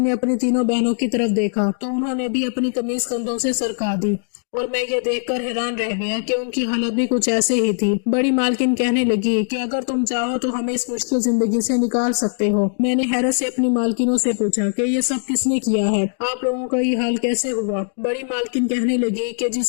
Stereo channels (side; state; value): right; silent; digital silence